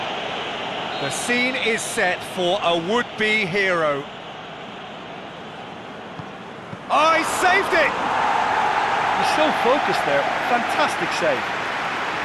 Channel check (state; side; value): identical; both; correlation 1.00